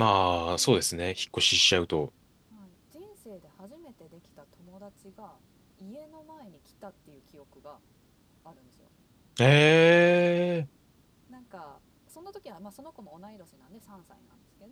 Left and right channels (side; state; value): both; identical; correlation 1.00